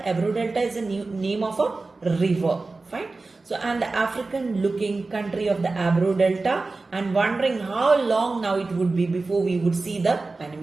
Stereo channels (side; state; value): left; quieter; 3.6 dB